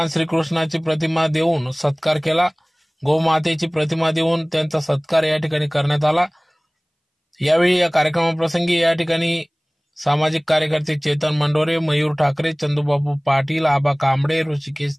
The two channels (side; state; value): both; identical; correlation 1.00